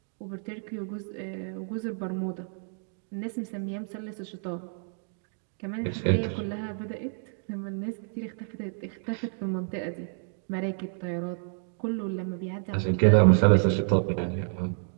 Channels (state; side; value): silent; left; 58 dB below the other